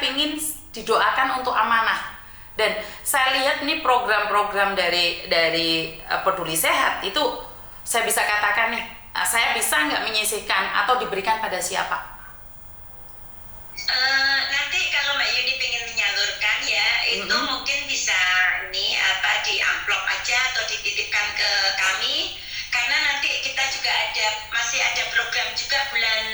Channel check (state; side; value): noise; right; rumble, 19 dB below the sound